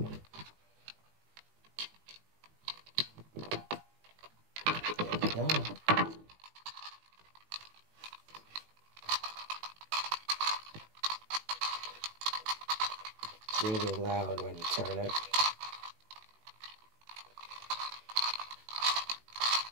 There we go. It's really loud when you turn it.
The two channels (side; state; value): left; late; 19 ms